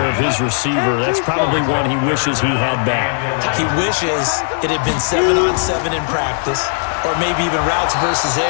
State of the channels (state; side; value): silent; right; 66 dB below the other